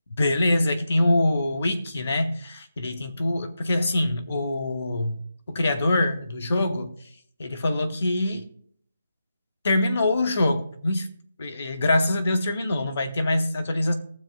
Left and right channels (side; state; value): both; inverted; correlation -0.88